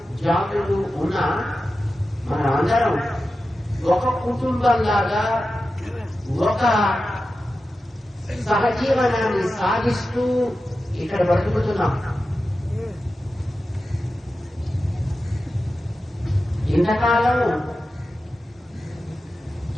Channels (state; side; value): normal; both; correlation 0.92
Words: జాతులు ఉన్న మన అందరం ఒక కుటుంబంలాగా ఒక సహజీవనాన్ని సాగిస్తూ ఇక్కడ బ్రతుకుతున్నాం. ఇంతకాలం